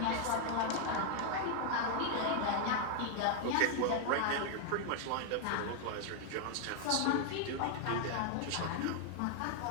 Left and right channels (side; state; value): both; different; correlation 0.00